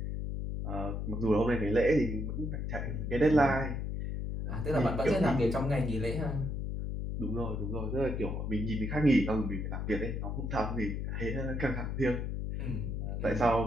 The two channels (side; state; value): left; noise; hum, 3 dB below the sound